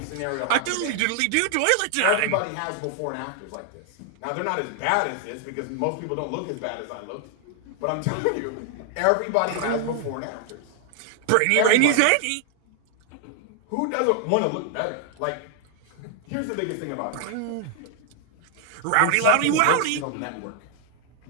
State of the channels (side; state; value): both; different; correlation 0.00